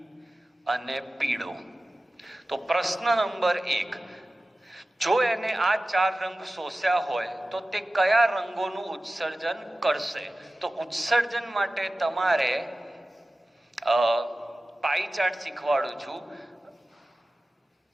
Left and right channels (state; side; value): normal; both; correlation 0.96